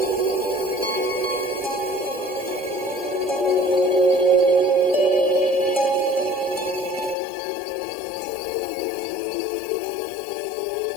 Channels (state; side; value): drops out; right; at 7.2 s